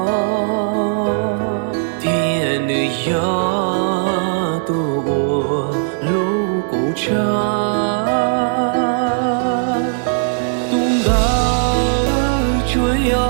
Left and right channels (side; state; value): left; silent; 63 dB below the other